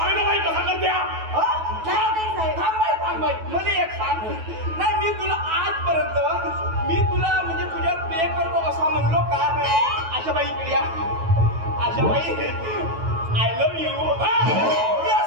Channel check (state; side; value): late; left; 9.2 ms